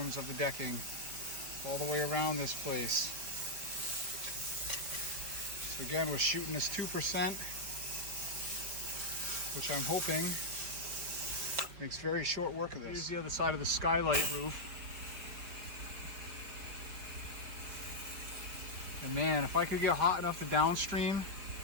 of the decking all the way around this place. So again, we're shooting this 2%. Which I'm hoping makes very short work of this. Here's the other side of the skylight roof. And man, if I could get hot enough to downstream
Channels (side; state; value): left; late; 4.7 ms